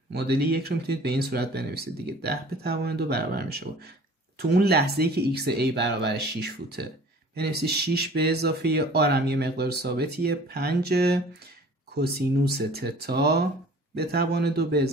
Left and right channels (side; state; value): both; normal; correlation 0.48